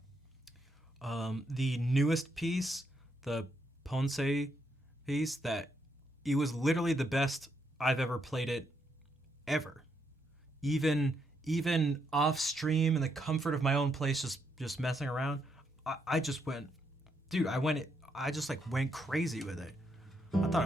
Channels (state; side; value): normal; both; correlation 0.78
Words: The newest piece, the Ponce piece, that it was literally the best I've ever played it ever. Even off stream in the comfort of my own place, just messing around, I just went, dude, I just like went crazy with it. I thought